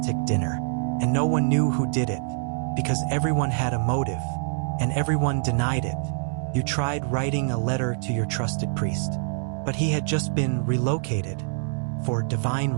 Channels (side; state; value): left; silent; digital silence